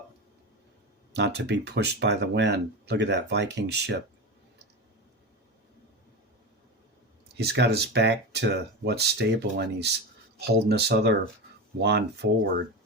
not to be pushed by the wind. Look at that Viking ship. He's got his back to what's stable and he's holding this other wand forward.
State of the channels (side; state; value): both; normal; correlation 0.21